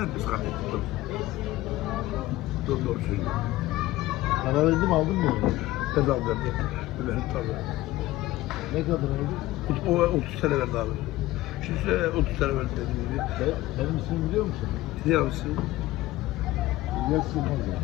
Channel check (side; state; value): right; quieter; 17.1 dB